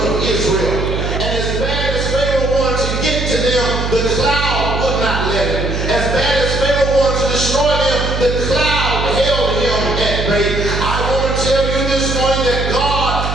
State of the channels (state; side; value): noise; right; hum, 3 dB below the sound